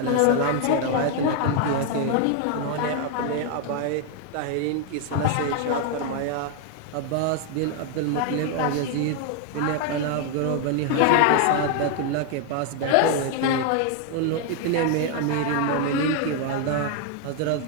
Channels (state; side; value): different; both; correlation 0.01